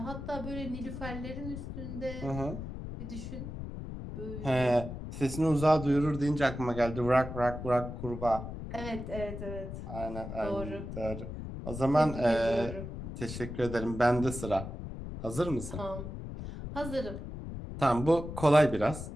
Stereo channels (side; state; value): left; noise; rumble, 8 dB below the sound